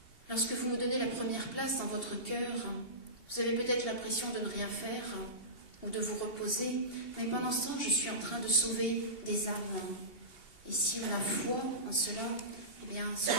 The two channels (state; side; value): late; right; 2.7 ms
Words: lorsque vous me donnez la première place dans votre cœur, vous avez peut-être l'impression de ne rien faire ou de vous reposer, mais pendant ce temps, je suis en train de sauver des âmes. Et si on a foi en cela, eh bien, cela